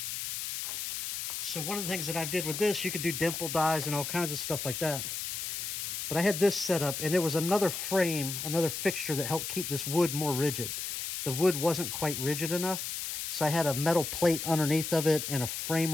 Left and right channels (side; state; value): left; noise; hiss, 4 dB below the sound